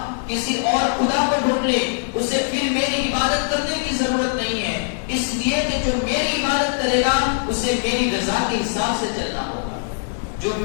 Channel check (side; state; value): right; silent; digital silence